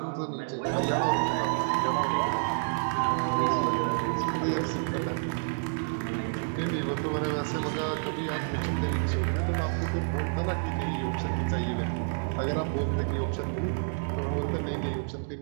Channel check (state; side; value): silent; left; digital silence